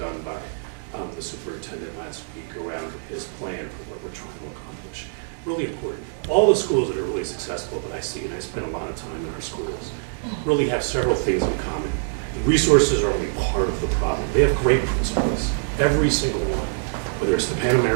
by the superintendent last week around his plan for what we're trying to accomplish. Really important. All the schools that are really successful that I see, and I spend a lot of time in our schools, really have several things in common. The resources are only part of the problem. They have great principals, every single one, whether it's the Pan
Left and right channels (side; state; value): left; silent; digital silence